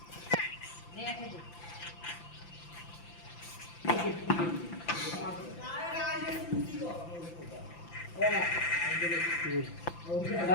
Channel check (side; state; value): right; late; 5.9 ms